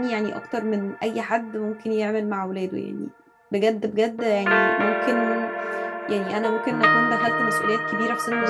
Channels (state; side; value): identical; both; correlation 1.00